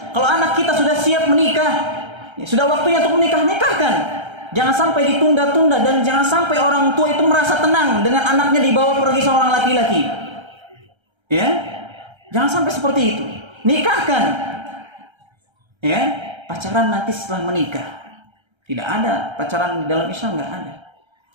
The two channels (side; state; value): left; late; 1.3 ms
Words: Kalau anak kita sudah siap menikah, ya, sudah waktunya untuk menikah, nikahkan. Jangan sampai ditunda-tunda, dan jangan sampai orang tua itu merasa tenang dengan anaknya dibawa pergi seorang laki-laki. Ya, jangan sampai seperti itu. Nikahkan. Ya, pacaran nanti setelah menikah. Tidak ada pacaran di dalam Islam, nggak ada.